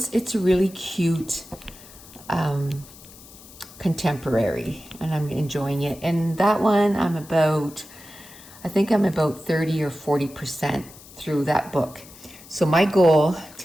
really cute. Contemporary, and I'm enjoying it. And that one I think I'm about 30 or 40% through that book. So my goal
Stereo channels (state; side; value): noise; left; hiss, 20 dB below the sound